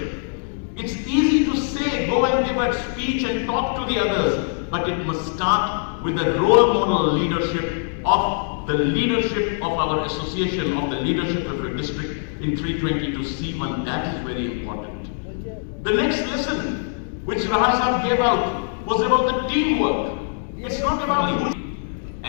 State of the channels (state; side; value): silent; right; digital silence